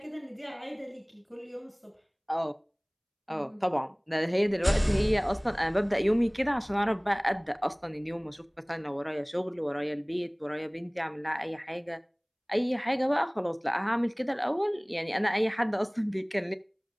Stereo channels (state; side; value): identical; both; correlation 1.00